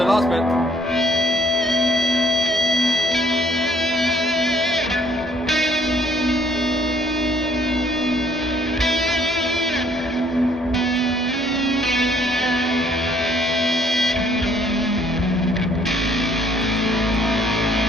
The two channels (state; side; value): normal; both; correlation 0.62